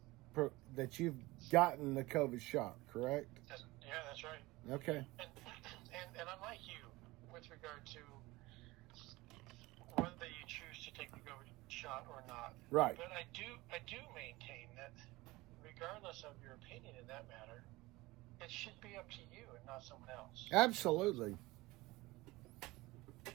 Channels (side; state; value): left; quieter; 20.5 dB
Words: gotten the COVID shot, correct? Yeah, that's right. Okay. And I'm like you with regard to whether you choose to take the COVID shot or not. Right. But I do maintain that regardless of your opinion in that matter, it should be up to you and not someone else. Absolutely.